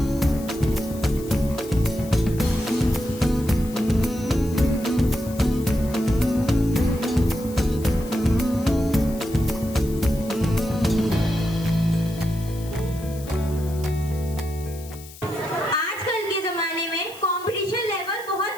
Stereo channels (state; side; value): noise; left; hiss, 18 dB below the sound